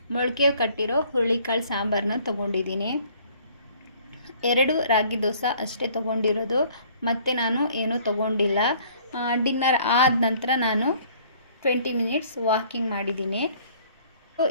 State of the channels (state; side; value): inverted; both; correlation -0.57